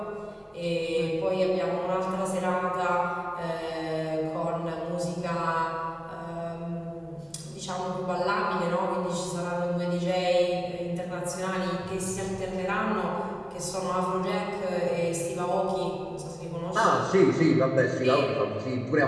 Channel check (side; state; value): both; identical; correlation 1.00